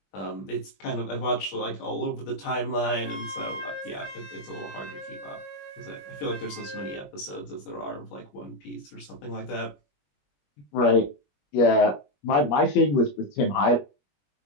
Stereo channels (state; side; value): late; right; 21 ms